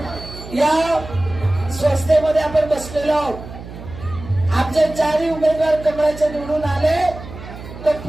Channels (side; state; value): right; noise; hum, 14 dB below the sound